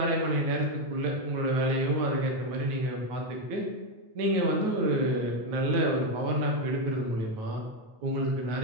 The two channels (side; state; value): left; late; 9.3 ms